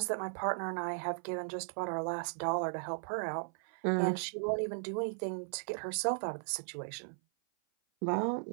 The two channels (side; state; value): left; silent; 53 dB below the other